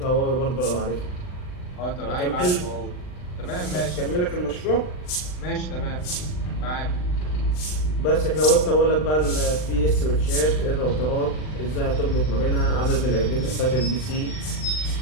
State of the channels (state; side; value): late; right; 39 ms